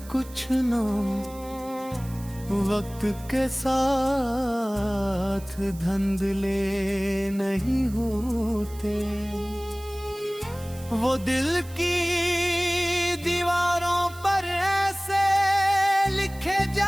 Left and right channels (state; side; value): noise; right; hiss, 20 dB below the sound